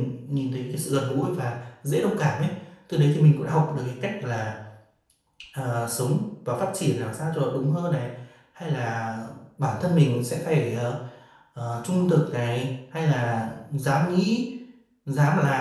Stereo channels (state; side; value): identical; both; correlation 1.00